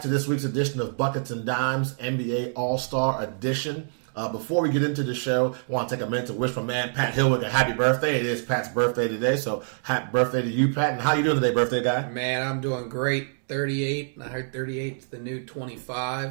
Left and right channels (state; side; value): silent; left; digital silence